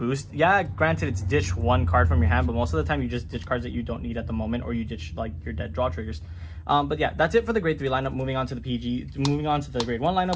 Yeah, granted, it's ditch 1 card from your hand, but most of the time you just ditch cards that you don't need at the moment, or you ditch like your dead draw triggers. But yeah, that's it for the grade 3 lineup. Moving on to the grade 1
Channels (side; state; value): both; identical; correlation 1.00